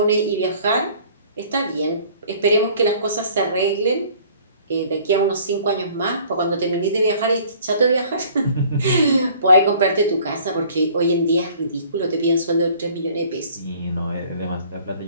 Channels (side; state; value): both; inverted; correlation -0.53